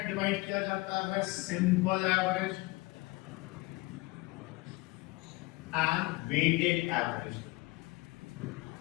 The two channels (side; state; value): right; quieter; 22.5 dB